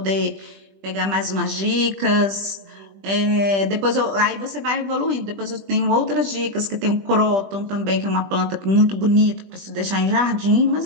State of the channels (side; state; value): left; late; 20 ms